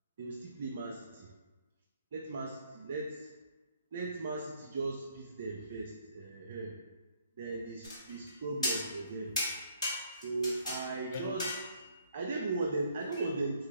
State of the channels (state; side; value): inverted; both; correlation -0.66